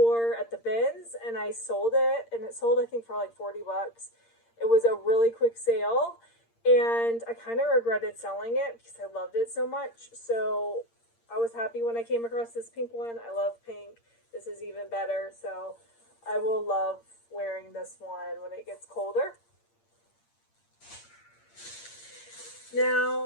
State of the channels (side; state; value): right; late; 8.7 ms